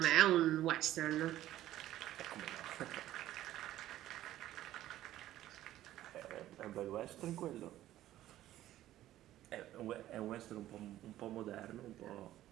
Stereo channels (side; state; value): left; quieter; 13.8 dB